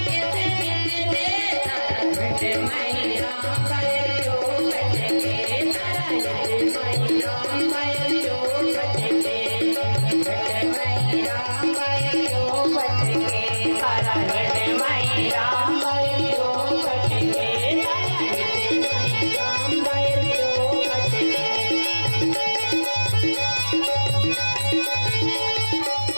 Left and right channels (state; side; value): inverted; both; correlation -1.00